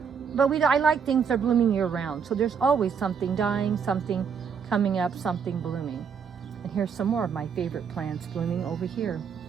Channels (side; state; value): left; quieter; 6.6 dB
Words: But I like things that are blooming year round. So there's always something dying, something coming up, something blooming. And here's some more of my favorite plants blooming over here,